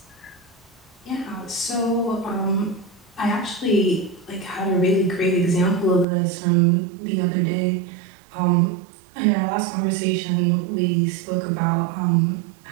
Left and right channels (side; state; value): left; drops out; at 6.1 s